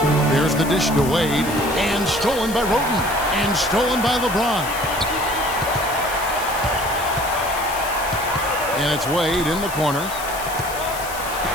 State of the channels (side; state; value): left; noise; hiss, 11 dB below the sound